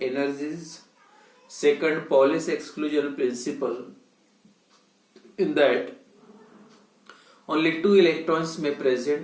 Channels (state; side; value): identical; both; correlation 1.00